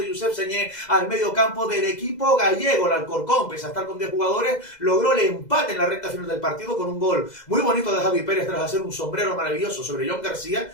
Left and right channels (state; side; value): late; right; 2.0 ms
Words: Josep Señé al medio campo del equipo gallego. El Alcorcón, pese a estar con 10 jugadores, logró el empate en la recta final del partido con un gol muy bonito de Javi Pérez tras hacer un sombrero maravilloso sobre John García,